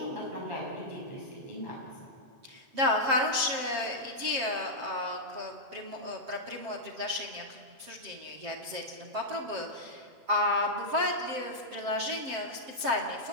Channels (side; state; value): left; late; 7.6 ms